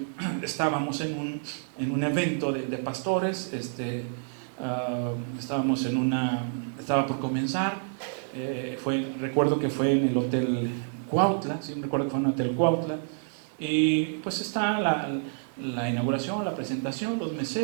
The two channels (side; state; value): left; silent; digital silence